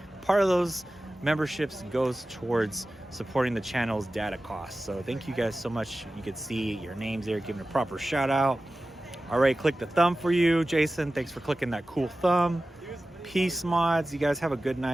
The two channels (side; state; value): both; normal; correlation 0.95